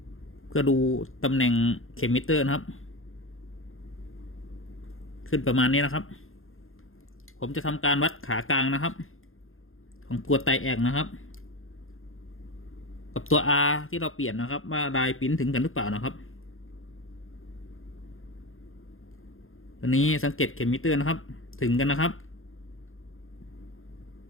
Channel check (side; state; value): right; late; 0.60 ms